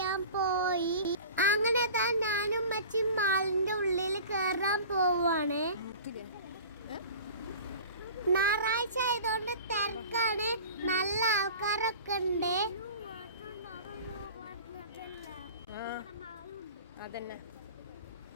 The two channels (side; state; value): both; inverted; correlation -0.39